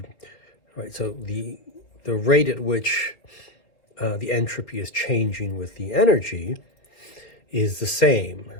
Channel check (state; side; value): late; right; 3.9 ms